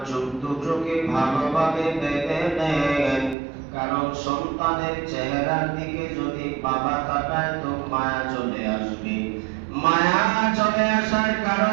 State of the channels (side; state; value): left; drops out; at 3.4 s